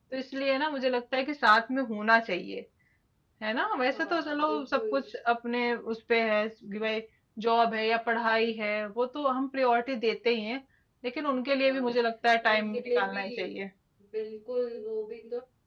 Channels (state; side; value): identical; both; correlation 1.00